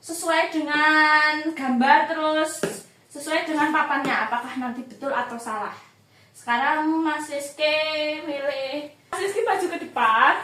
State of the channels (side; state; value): both; identical; correlation 1.00